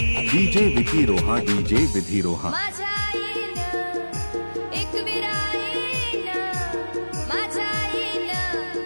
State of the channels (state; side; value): inverted; both; correlation -1.00